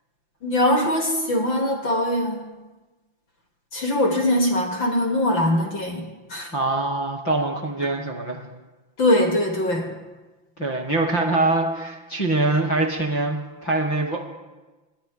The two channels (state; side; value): late; right; 5.8 ms